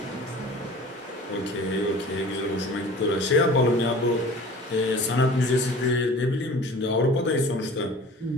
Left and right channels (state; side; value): normal; both; correlation 0.43